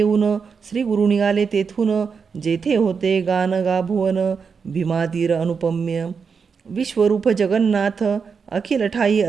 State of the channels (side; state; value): left; quieter; 5.8 dB